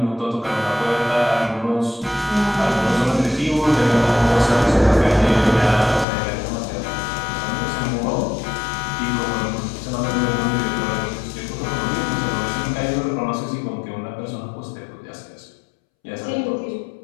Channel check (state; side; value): drops out; right; at 6.1 s